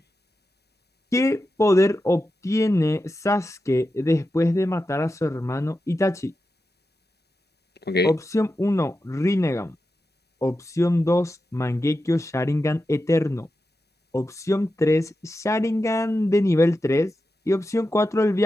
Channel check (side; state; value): both; normal; correlation 0.90